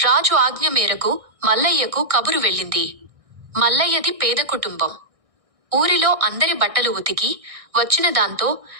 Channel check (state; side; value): late; left; 1.6 ms